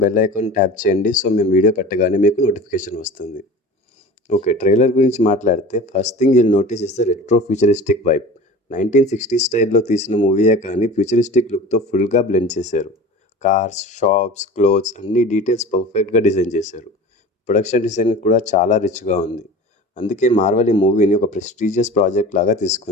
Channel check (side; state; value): both; normal; correlation 0.37